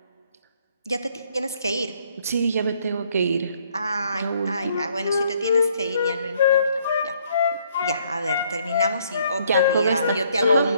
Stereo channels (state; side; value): inverted; both; correlation -0.67